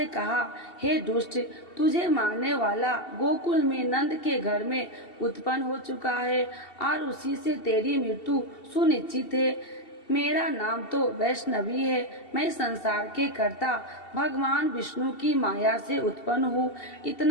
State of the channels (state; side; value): late; right; 2.7 ms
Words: कहा, हे दुष्ट, तुझे मारने वाला गोकुल में नंद के घर में उत्पन्न हो चुका है और उसी से तेरी मृत्यु सुनिश्चित है। मेरा नाम तो वैष्णवी है, मैं संसार के कर्ता भगवान विष्णु की माया से उत्पन्न हूँ।